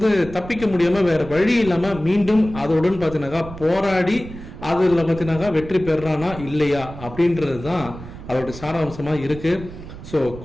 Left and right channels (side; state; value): right; noise; rumble, 14 dB below the sound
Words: தப்பிக்க முடியாம வேற வழி இல்லாம மீண்டும் அதோடன் பார்த்தீங்கன்னாக்கா போராடி அதில் பார்த்தீங்கன்னாக்கா வெற்றி பெறானா இல்லையா அப்படின்றது தான் அதோட சாராம்சமாக இருக்கு. ஸோ